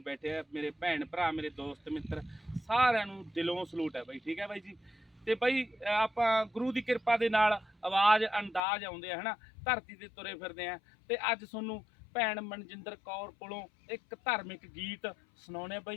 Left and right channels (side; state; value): right; drops out; at 8.6 s